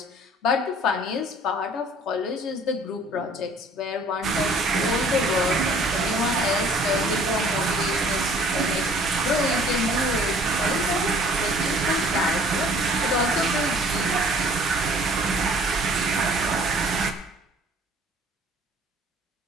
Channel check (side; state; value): both; normal; correlation 0.53